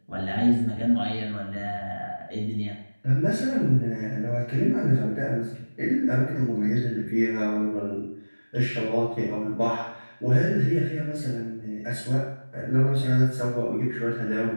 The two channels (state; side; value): inverted; both; correlation -1.00